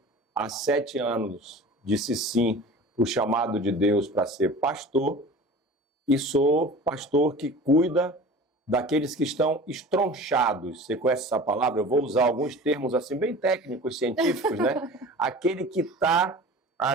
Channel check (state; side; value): normal; both; correlation 0.39